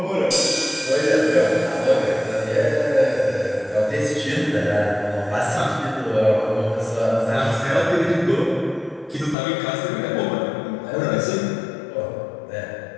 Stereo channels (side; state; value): right; drops out; at 9.3 s